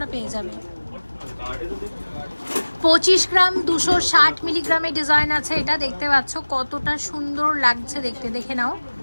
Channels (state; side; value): inverted; both; correlation -1.00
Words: পেয়ে যাবে। 25 গ্রাম 260 মিলিগ্রামের ডিজাইন আছে। এটা দেখতে পাচ্ছ কতটা সুন্দর লাগছে দেখতে, দেখে নাও।